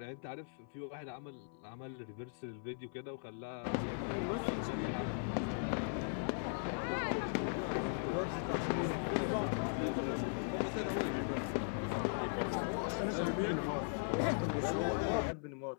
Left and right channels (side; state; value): right; silent; 52 dB below the other